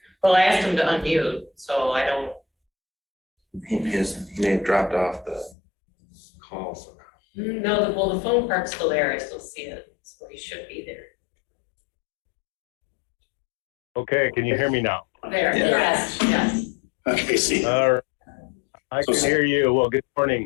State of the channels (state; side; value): drops out; right; at 5.6 s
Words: Well, I asked him to unmute, so I don't, He may have dropped off the call somehow. no, the phone part's still there, I still see it, so he should be there. Okay, can you hear me now? There, Yeah. yes. Okay, see. All right. I can hear you. Well, good